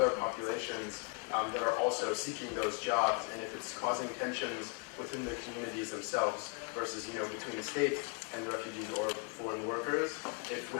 populations that are also seeking those jobs, and if it's causing tensions within the communities themselves versus, between the state and the refugees or foreign workers, if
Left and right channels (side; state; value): right; quieter; 34.3 dB